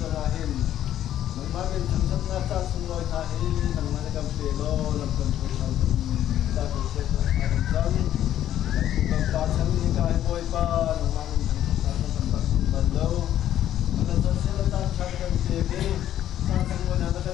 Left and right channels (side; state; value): right; quieter; 11.7 dB